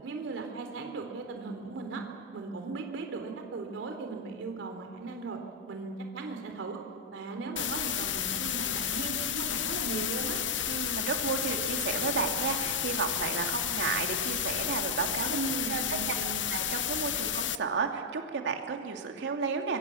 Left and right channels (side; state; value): both; normal; correlation -0.02